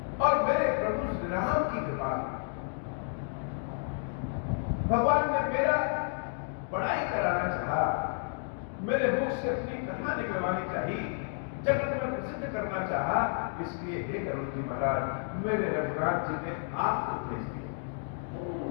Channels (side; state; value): right; silent; 57 dB below the other